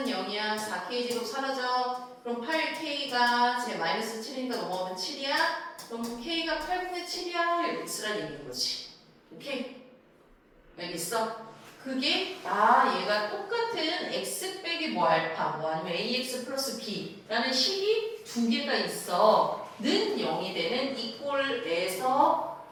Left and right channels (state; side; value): identical; both; correlation 1.00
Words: 0이야. 4k제곱 사라져. 그럼 8k가 제 마이너스 7이니까 넘어가면 7이야. 그럼 k가 8분의 7이야. 이렇게 쓰라는 얘기인 거지. 오케이? 알겠어? 그게 얘가 똑같은 x 빼기 뭐 알파 뭐 아니면 ax 플러스 b라는 식이 두 개가 있어. 는 0이 되는 이 꼴에서